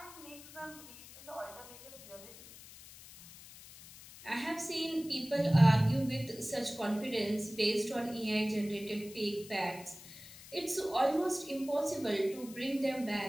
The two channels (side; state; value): left; noise; hiss, 17 dB below the sound